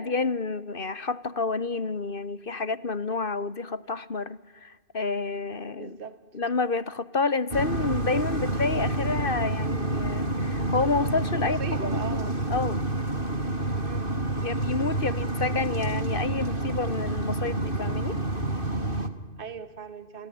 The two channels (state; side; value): late; right; 2.6 ms